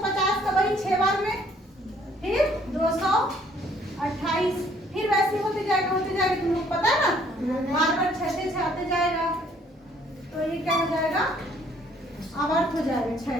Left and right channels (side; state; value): both; normal; correlation 0.62